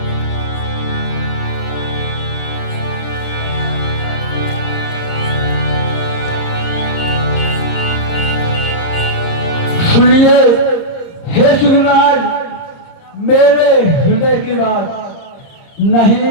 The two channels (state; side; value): late; right; 30 ms